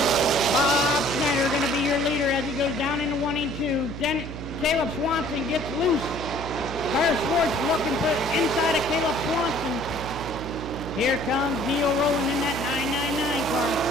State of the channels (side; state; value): right; noise; hum, 9 dB below the sound